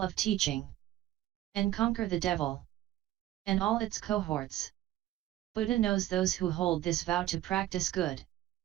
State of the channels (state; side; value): quieter; left; 14.1 dB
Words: of teaching, and conquer the devil and all its cohorts. Buddha knows those who hold this vow to practice good,